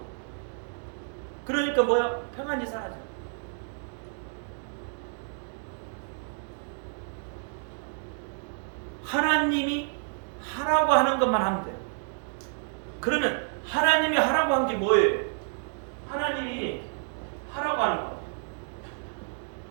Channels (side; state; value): left; silent; digital silence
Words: 그러니까 뭐야? 평안이 사라져요. 하나님이 하라고 하는 것만 하면 돼요. 그러면 하나님이 하라고 한 게 뭐예요? 하나님이 하라고 하는 거,